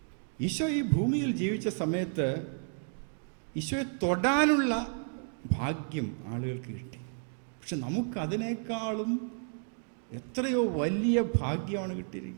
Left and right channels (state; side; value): silent; left; 57 dB below the other